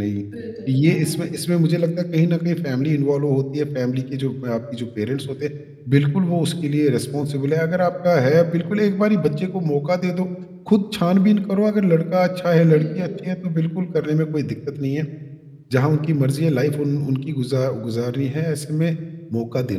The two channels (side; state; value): both; identical; correlation 1.00